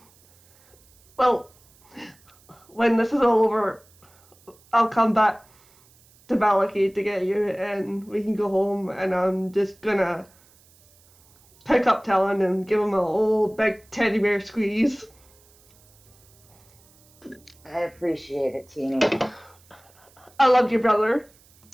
Well, when this is all over, I'll come back to Valaki to get you, and we can go home, and I'm just gonna pick up Talon and give him a old big teddy bear squeeze. I appreciate it, Teeny. I love you, brother.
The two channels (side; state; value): right; noise; hiss, 30 dB below the sound